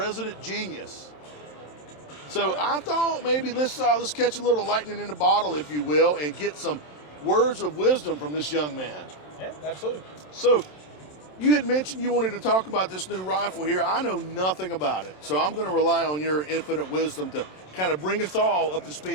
genius. So I thought maybe let's catch a little lightning in the bottle, if you will, and get some words of wisdom from this young man. Yeah, absolutely. So you had mentioned you wanted to talk about this new rifle here. I know nothing about it, so I'm going to rely on your infinite wisdom to kind of bring us all up to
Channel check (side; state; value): right; late; 27 ms